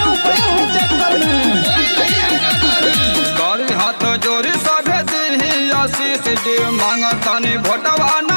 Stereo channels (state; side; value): inverted; both; correlation -1.00